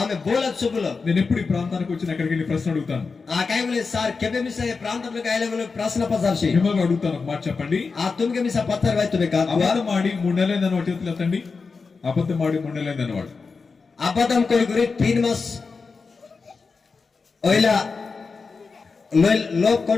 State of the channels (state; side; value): quieter; right; 4.7 dB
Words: బోల చుబులో నేను ఎప్పుడు ఈ ప్రాంతానికి వచ్చిన అక్కడికి వెళ్ళి ప్రశ్న అడుగుతాను. ఆ కైబులే సార్ కెబె మిసే ప్రాంతంలో గాయలగులు ప్రశ్న పసార్షి మిమ్మల్ని అడుగుతాను, ఒక మాట చెప్పండి. ఆ తుమ్కే మిసా పత్తర్ వై తుమే కా అబద్ధం ఆడి 3 నెలలైందని వాడు చేతులు ఎత్తండి. అబద్ధం ఆడి 3 నెలలైందని వాడు అబద్ధం కోయి గురి 3 మాస్ ओइला लोग